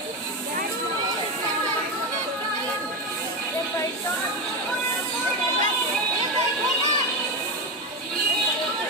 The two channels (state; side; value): normal; both; correlation 0.16